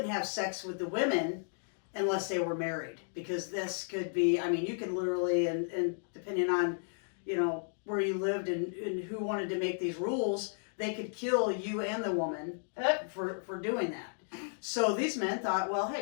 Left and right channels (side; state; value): right; silent; digital silence